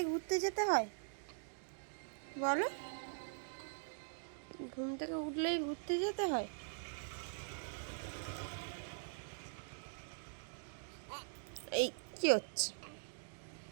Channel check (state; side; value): silent; left; digital silence